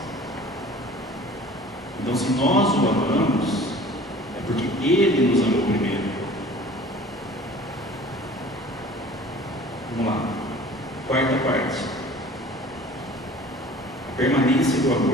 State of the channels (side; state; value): both; normal; correlation 0.46